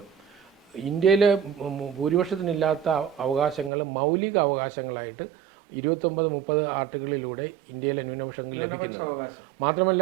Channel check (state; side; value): drops out; left; at 3.7 s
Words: ഇന്ത്യയിലെ ഭൂരിപക്ഷത്തിനില്ലാത്ത അവകാശങ്ങൾ മൗലിക അവകാശങ്ങളായിട്ട് 29-30 ആർട്ടിക്കിളിലൂടെ ഇന്ത്യയിലെ ന്യൂനപക്ഷ അവകാശം മാത്രമല്ല